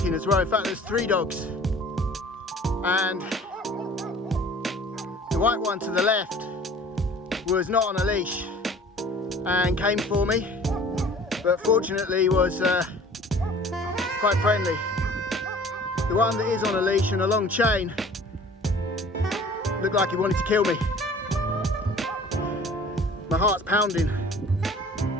as well. In fact, there's 3 dogs. And the white one to the left was not on a leash and came for me, but fortunately was quite friendly. The one that is on a leash and a long chain looked like he wanted to kill me. My heart's pounding.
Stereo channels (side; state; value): both; normal; correlation 0.48